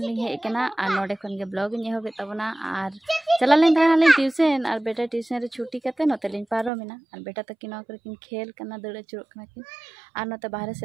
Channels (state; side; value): drops out; left; at 6.7 s